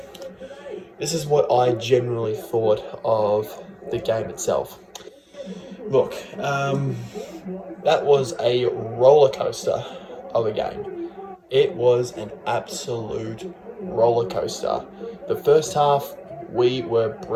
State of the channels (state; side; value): identical; both; correlation 1.00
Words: This is what I generally thought of the game itself. Look, that was a roller coaster of a game. It was an absolute roller coaster. The first half, we were